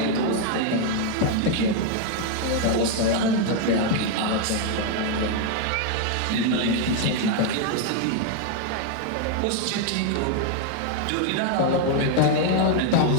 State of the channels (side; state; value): both; different; correlation 0.00